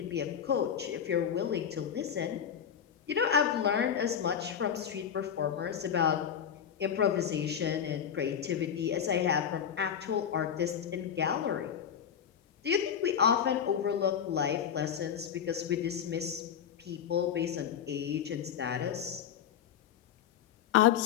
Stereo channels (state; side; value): quieter; right; 8.4 dB